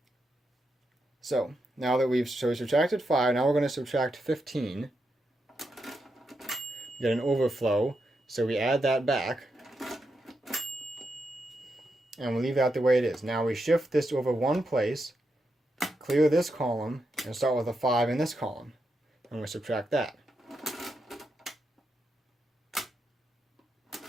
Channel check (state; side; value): normal; both; correlation 0.84